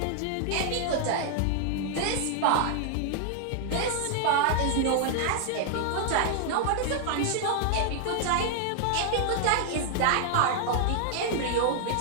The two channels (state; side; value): different; both; correlation 0.00